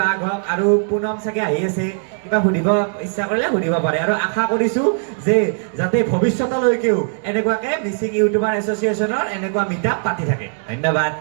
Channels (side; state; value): left; silent; 59 dB below the other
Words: বাঘ হওক আৰু পুনম চাগে আহি আছে কিবা সুধিব ইচ্ছা কৰিলে সুধিব পাৰে আৰু আশা কৰিছোঁ যে যাতে ভৱিষ্যতলৈকেও এনেকুৱাকৈ মিচিং ইউটিউবাৰ এছ'চিয়েশ্যনৰ এনেকুৱা মিটআপ পাতি থাকে ধন্যবাদ